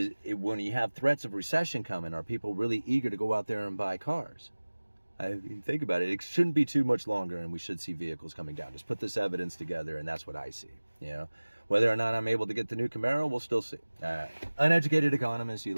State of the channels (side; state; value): both; inverted; correlation -1.00